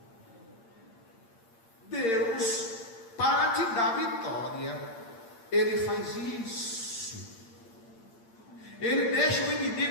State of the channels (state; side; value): late; right; 8.8 ms